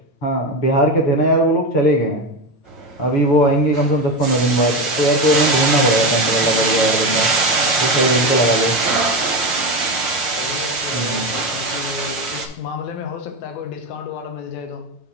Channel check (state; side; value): late; right; 9.2 ms